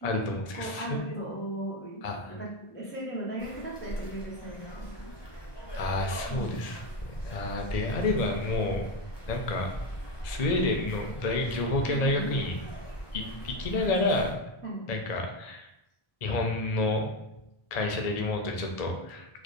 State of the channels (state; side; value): late; right; 1.7 ms